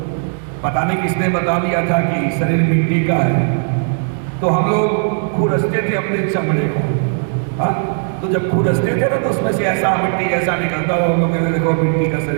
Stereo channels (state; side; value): silent; left; 66 dB below the other